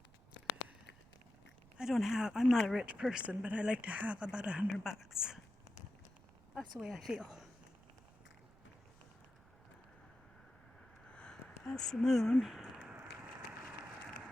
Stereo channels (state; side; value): noise; right; rumble, 25 dB below the sound